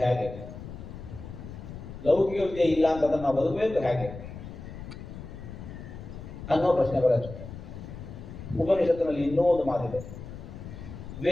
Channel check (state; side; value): noise; left; rumble, 11 dB below the sound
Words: ಹೇಗೆ? ಲೌಕಿಕ ವಿದ್ಯೆ ಇಲ್ಲ ಅಂತಂದ್ರೆ ನಾವು ಬದುಕಬೇಕು ಹೇಗೆ? ಅನ್ನೋ ಪ್ರಶ್ನೆ ಬರುತ್ತೆ. ಉಪನಿಷತ್ತಿನಲ್ಲಿ ಇನ್ನೂ ಒಂದು ಮಾತಿದೆ,